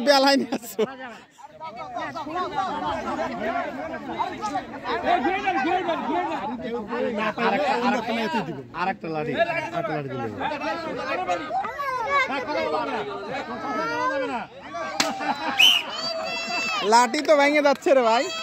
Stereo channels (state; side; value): identical; both; correlation 1.00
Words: বেলায় নিয়ে আসছো। আরেকটা লাঠি দিলে লাঠি তো ভেঙে যাচ্ছে রে ভাই।